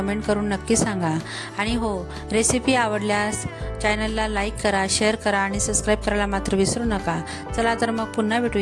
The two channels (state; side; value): identical; both; correlation 1.00